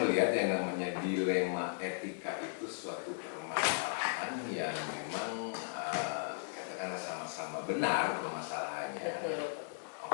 melihat yang namanya dilema etika itu suatu permasalahan yang memang katakanlah sama-sama benar permasalahannya.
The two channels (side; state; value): right; silent; digital silence